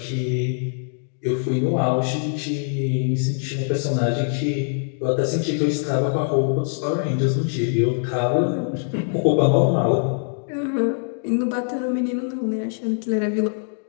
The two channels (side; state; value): right; silent; digital silence